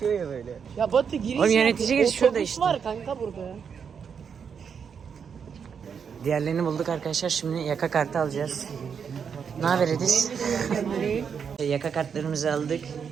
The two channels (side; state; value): left; quieter; 6.8 dB